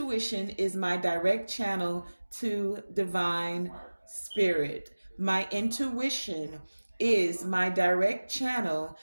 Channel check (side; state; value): both; inverted; correlation -1.00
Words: is my direct channel to divine spirit. My intuition is my direct channel